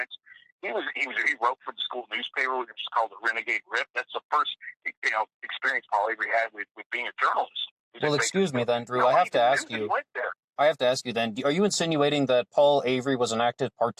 he wrote for the school newspaper, which is called the Renegade Rip. That's the first experience Paul Avery had with being a journalist. Well, excuse me then, Drew. Nobody even knew that he went there. I have to ask you then, are you insinuating that Paul Avery was an active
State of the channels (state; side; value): identical; both; correlation 1.00